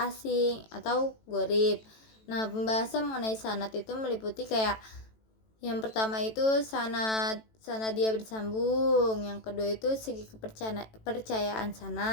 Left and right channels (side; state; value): right; late; 18 ms